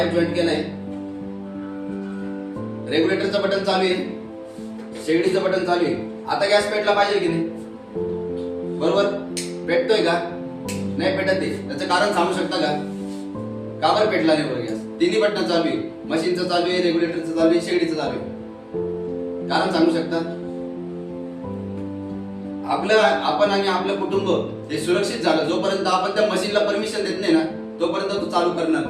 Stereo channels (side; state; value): both; identical; correlation 1.00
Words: जॉईंट केलाय. रेग्युलेटरचं बटन चालू आहे, शेगडीचं बटन चालू आहे. आता गॅस पेटला पाहिजे की नाही? बरोबर. पेटतोय का? नाही पेटत आहे. त्याचं कारण सांगू शकता का? का बरं पेटला नाही बरं गॅस? तिन्ही बटन चालू आहे, मशीनचं चालू आहे, रेग्युलेटरचं चालू आहे, शेगडीचं चालू आहे. कारण सांगू शकता? आपण आणि आपलं कुटुंब हे सुरक्षित झालं जोपर्यंत आपण त्या मशीनला परमिशन देत नाही ना, तोपर्यंत तो चालू करणार